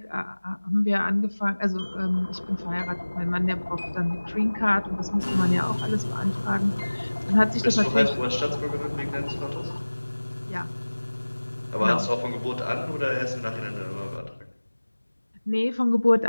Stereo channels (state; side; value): inverted; both; correlation -1.00